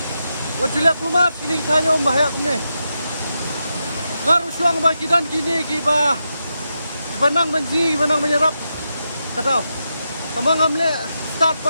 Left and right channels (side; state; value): both; inverted; correlation -0.86